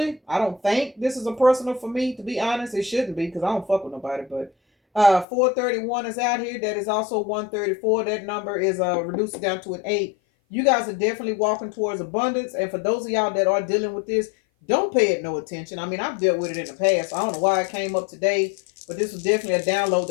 I don't think this is a personal for me, to be honest. It shouldn't be because I don't fuck with nobody. But 431 is out here. That is also 134. That number is reduced down to an 8. You guys are definitely walking towards abundance. And for those of y'all that are dealing with this, don't pay it no attention. I mean, I've dealt with it in the past. I don't know why it came up today, but this was definitely a download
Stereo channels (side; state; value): right; drops out; at 5.2 s